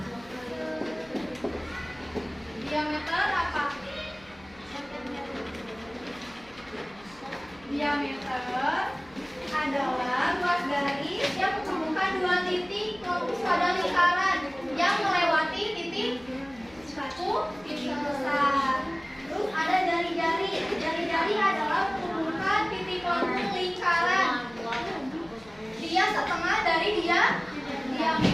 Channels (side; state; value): left; noise; hum, 25 dB below the sound